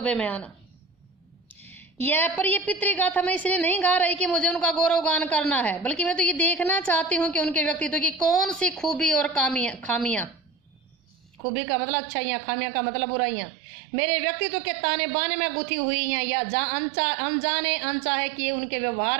में आना। पर ये पितृगाथा मैं इसलिए नहीं गा रही कि मुझे उनका गौरव गान करना है, बल्कि मैं तो ये देखना चाहती हूँ कि उनके व्यक्तित्व की कौन सी खूबी और खामियां, खूबी का मतलब अच्छाइयाँ, खामियां का मतलब बुराइयाँ, मेरे व्यक्तित्व के ताने बाने में गुथी हुई हैं, या अनजाने अनचाहे किए उनके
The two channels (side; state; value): left; drops out; at 11.4 s